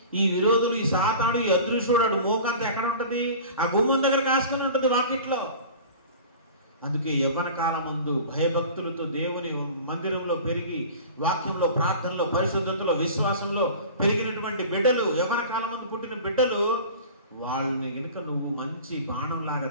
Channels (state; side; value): inverted; both; correlation -0.39